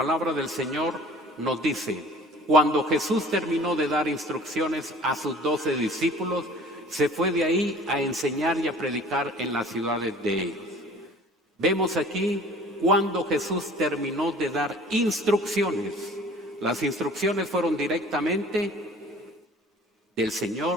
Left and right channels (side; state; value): both; normal; correlation 0.48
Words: del Señor nos dice, cuando Jesús terminó de dar instrucciones a sus 12 discípulos, se fue de ahí a enseñar y a predicar en las ciudades de ellos. Vemos aquí cuando Jesús terminó de dar instrucciones. Las instrucciones fueron directamente del